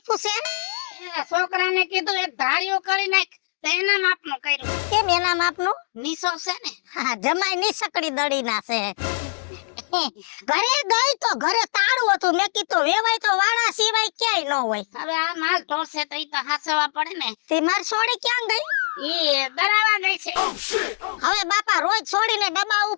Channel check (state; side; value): silent; right; digital silence